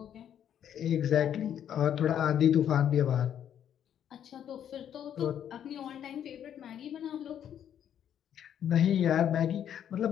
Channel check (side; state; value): right; quieter; 9.6 dB